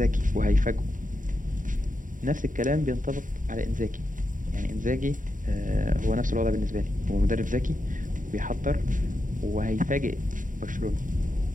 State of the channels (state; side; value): late; left; 0.38 ms